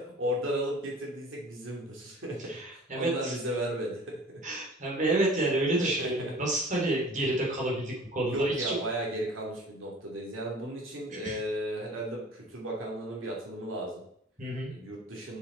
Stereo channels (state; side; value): normal; both; correlation 0.46